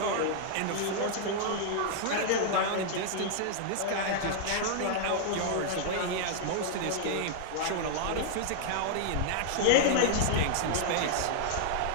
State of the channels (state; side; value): different; both; correlation -0.01